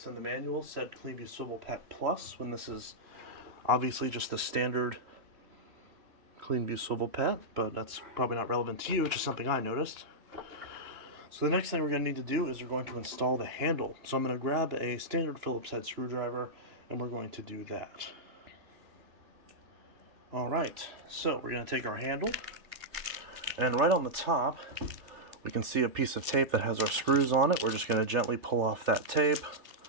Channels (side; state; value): left; late; 3.3 ms